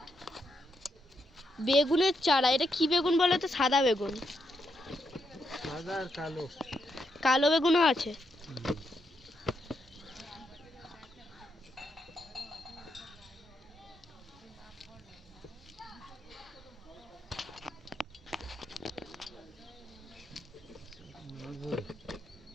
বেগুনের চারা। এটা কি বেগুন বলো তো? সাদা বেগুন, সাদা আর কালো, কালো বেগুনও আছে।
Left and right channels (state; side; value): normal; both; correlation 0.80